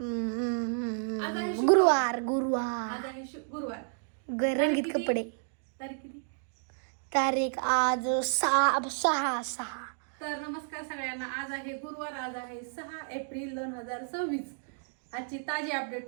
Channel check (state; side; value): silent; left; digital silence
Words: आज आहे शुक्रवार. गुरुवार गुरुवार आज आहे गुरुवार. रंगीत किती? कपडे तारीख किती? तारीख आज 6 तर नमस्कार सगळ्यांना. आज आहे गुरुवार. आज आहे 6 एप्रिल 2026. आजची ताजी